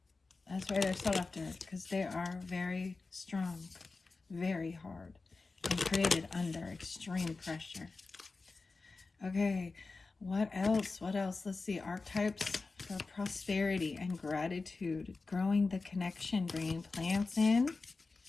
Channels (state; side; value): quieter; right; 3.9 dB